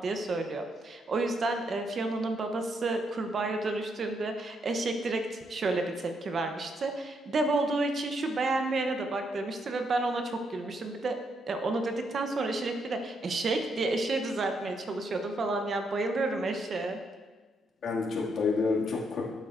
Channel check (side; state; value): both; normal; correlation 0.77